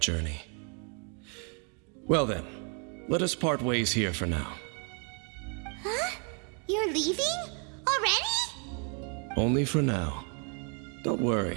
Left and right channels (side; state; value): left; quieter; 38.8 dB